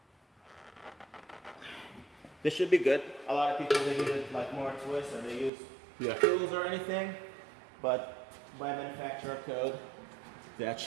This should be good. A lot of people they use it like more twist or they use tools or anything, but by manufacturer code, that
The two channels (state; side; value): drops out; left; at 5.5 s